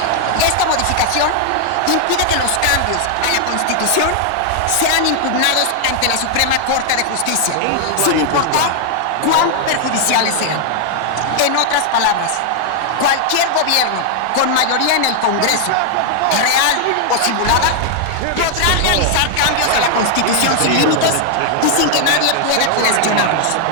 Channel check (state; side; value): different; both; correlation 0.00